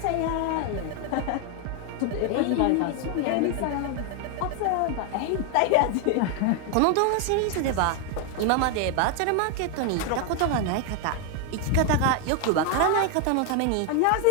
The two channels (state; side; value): different; both; correlation 0.01